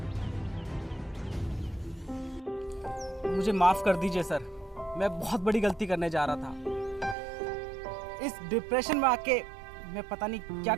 मुझे माफ कर दीजिए सर, मैं बहुत बड़ी गलती करने जा रहा था। इस डिप्रेशन में आके मैं पता नहीं क्या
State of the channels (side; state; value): left; drops out; at 7.2 s